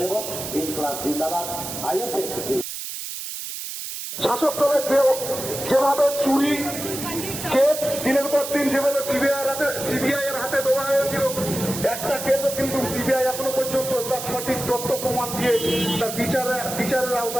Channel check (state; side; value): noise; right; hiss, 7 dB below the sound